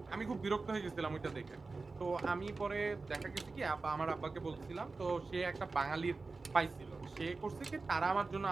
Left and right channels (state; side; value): quieter; left; 3.9 dB